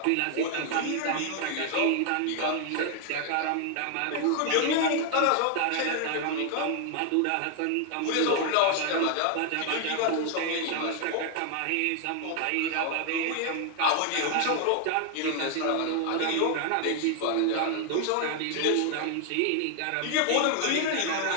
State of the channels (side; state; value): both; different; correlation 0.00